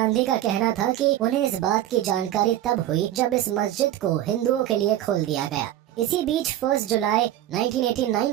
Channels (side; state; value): left; quieter; 12.9 dB